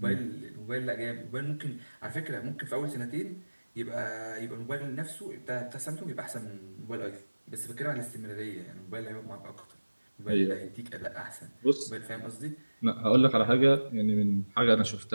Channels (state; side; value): inverted; both; correlation -1.00